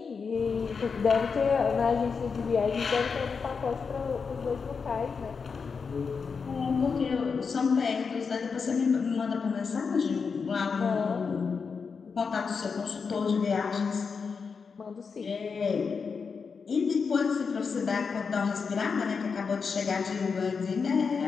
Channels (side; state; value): right; quieter; 5.4 dB